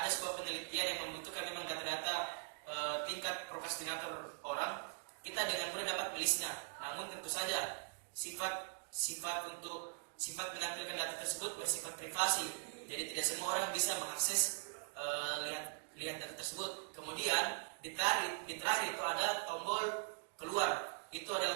sebuah penelitian yang membutuhkan memang data-data tingkat prokrastinator orang, kita dengan mudah dapat melisnya. Namun tentu saja sifat menampilkan data tersebut bersifat privasi. Jadi tidak semua orang bisa mengakses lihat data tersebut. Kemudian di terakhir itu ada tombol keluar. Itu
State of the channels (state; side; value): silent; left; digital silence